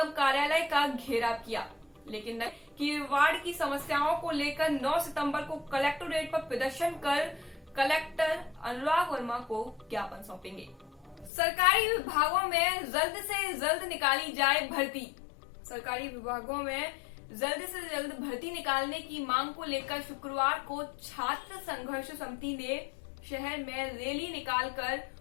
कार्यालय का घेराव किया, लेकिन कि वार्ड की समस्याओं को लेकर 9 सितंबर को कलेक्टोरेट पर प्रदर्शन कर कलेक्टर अनुराग वर्मा को ज्ञापन सौंपेंगे। सरकारी विभागों में जल्द से जल्द निकाली जाए भर्ती। सरकारी विभागों में जल्द से जल्द भर्ती निकालने की मांग को लेकर शुक्रवार को छात्र संघर्ष समिति ने शहर में रैली निकालकर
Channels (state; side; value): drops out; right; at 11.3 s